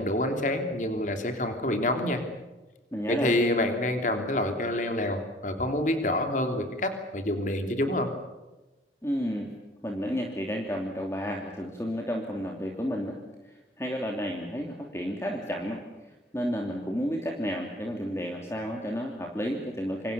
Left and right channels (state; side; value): normal; both; correlation 0.51